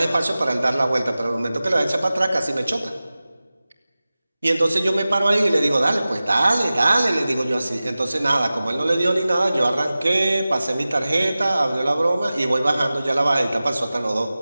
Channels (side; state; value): both; inverted; correlation -0.96